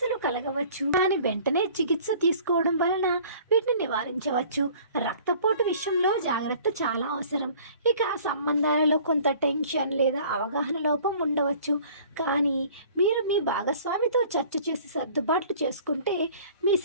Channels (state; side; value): inverted; both; correlation -0.50